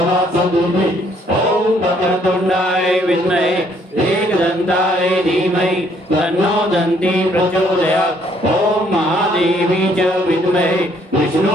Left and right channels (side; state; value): both; normal; correlation 0.66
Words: सदुमि ॐ वक्रतुण्डाय विद्महे एकदन्ताय धीमहि तन्नो दन्ती प्रचोदयात् ॐ महादेवी च विद्महे